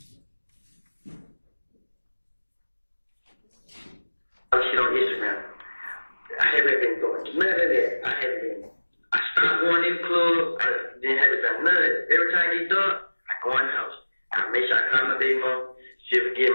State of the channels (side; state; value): both; inverted; correlation -1.00